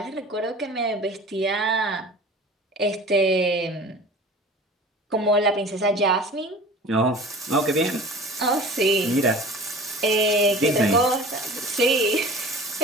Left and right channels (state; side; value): normal; both; correlation 0.40